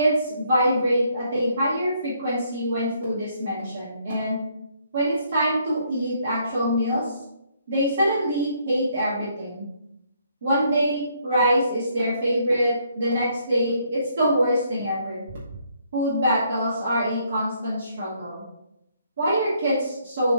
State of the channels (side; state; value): both; inverted; correlation -0.70